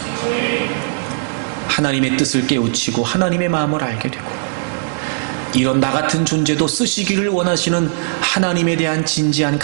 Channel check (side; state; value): left; silent; 62 dB below the other